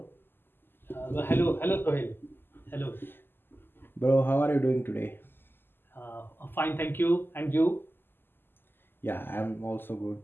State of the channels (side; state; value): right; late; 0.099 ms